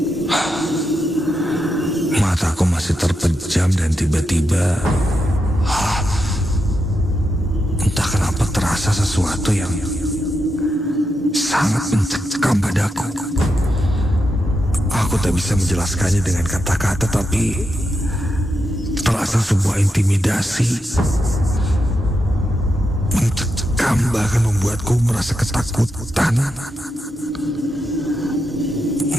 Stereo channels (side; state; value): both; normal; correlation 0.85